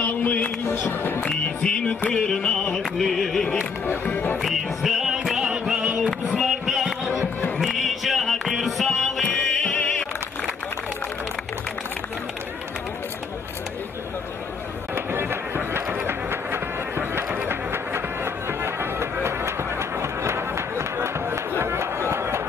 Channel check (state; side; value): quieter; right; 5.3 dB